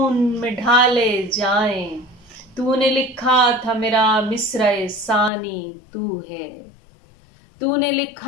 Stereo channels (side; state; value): right; drops out; at 5.3 s